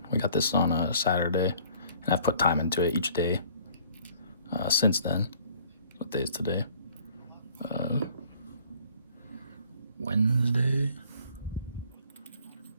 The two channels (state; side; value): inverted; both; correlation -0.55